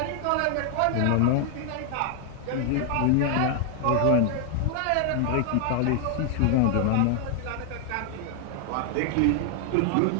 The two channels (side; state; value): both; different; correlation 0.00